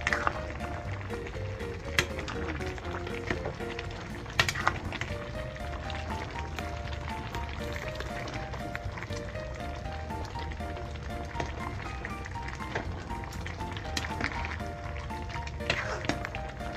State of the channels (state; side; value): identical; both; correlation 1.00